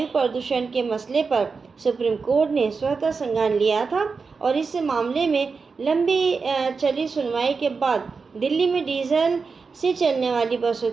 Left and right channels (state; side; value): quieter; left; 4.8 dB